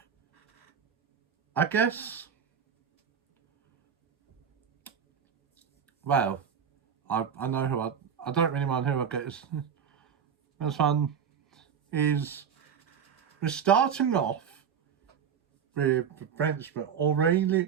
I guess, well, I know who I don't really mind who I get. This one is, we're starting off with the Frenchman, Aurelie,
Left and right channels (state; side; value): quieter; left; 7.5 dB